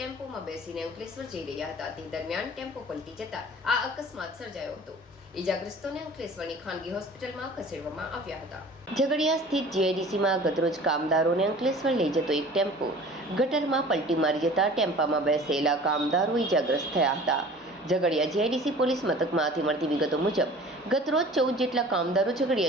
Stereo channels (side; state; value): both; normal; correlation 0.44